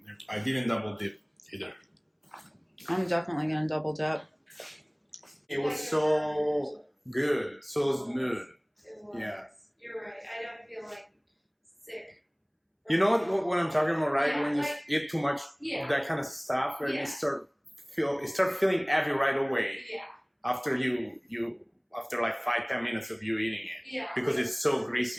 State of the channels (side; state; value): both; identical; correlation 1.00